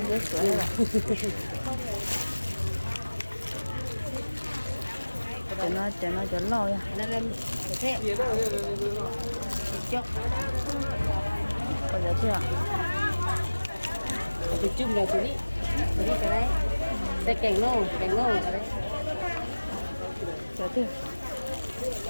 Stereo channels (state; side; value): inverted; both; correlation -1.00